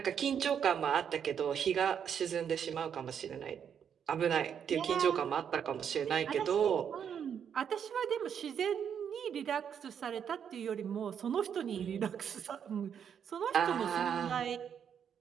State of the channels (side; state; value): left; quieter; 8.0 dB